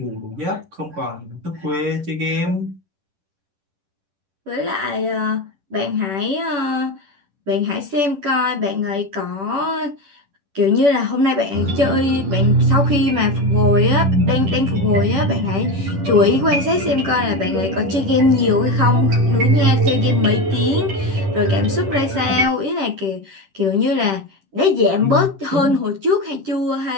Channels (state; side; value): late; left; 10 ms